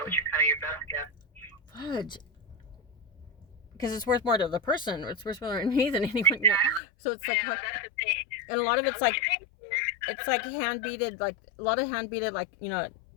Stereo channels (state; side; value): drops out; right; at 6.8 s